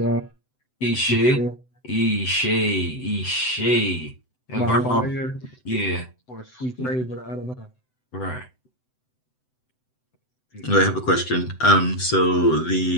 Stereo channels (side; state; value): right; late; 7.9 ms